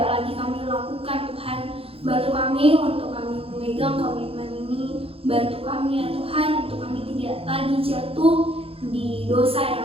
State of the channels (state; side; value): late; left; 0.27 ms